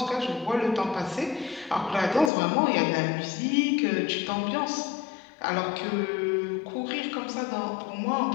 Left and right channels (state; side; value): drops out; right; at 2.3 s